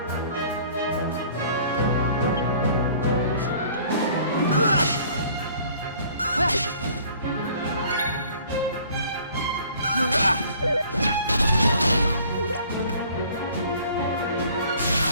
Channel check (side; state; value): both; inverted; correlation -0.53